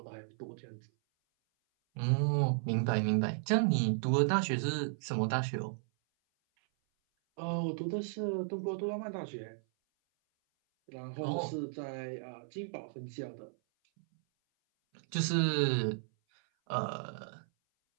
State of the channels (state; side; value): silent; left; 55 dB below the other